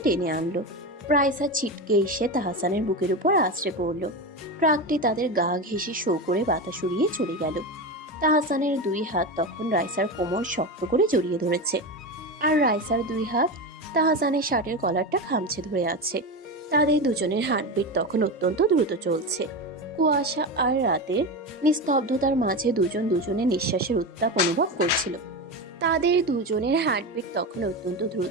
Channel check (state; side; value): normal; both; correlation 0.20